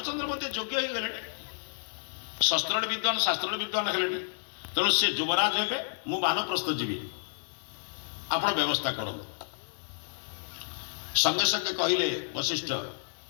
मध्य योग्य हो गले शस्त्र विद्वान शास्त्र विद्वान है तेणु से युवराज हे मु बानप्रस्थ जीवी आपण व्यवस्था करूँ संगे संगे कहले वशिष्ठ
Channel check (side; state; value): right; silent; digital silence